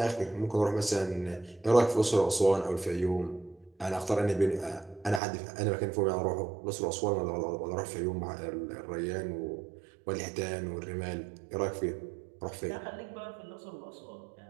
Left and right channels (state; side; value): drops out; left; at 5.2 s